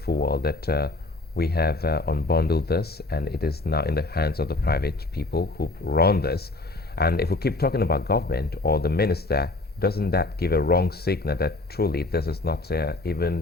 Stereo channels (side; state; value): right; quieter; 3.0 dB